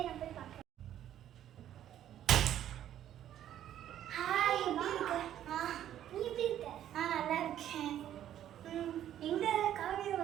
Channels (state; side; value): quieter; left; 11.3 dB